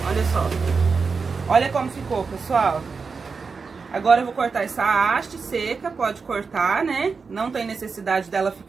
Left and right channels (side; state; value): left; quieter; 5.0 dB